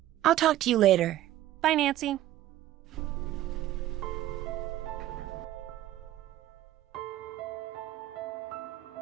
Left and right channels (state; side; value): quieter; left; 13.9 dB